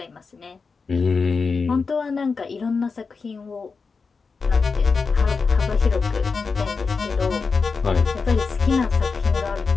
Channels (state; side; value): quieter; right; 4.8 dB